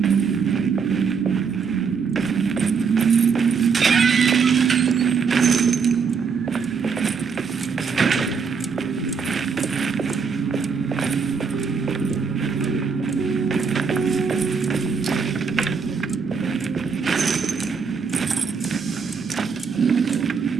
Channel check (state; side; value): quieter; left; 5.7 dB